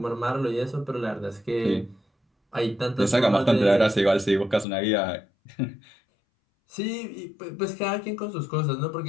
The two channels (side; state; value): right; drops out; at 4.7 s